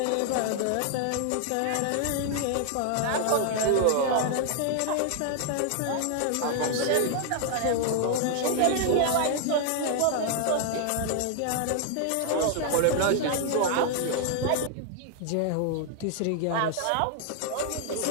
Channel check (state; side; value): different; both; correlation 0.00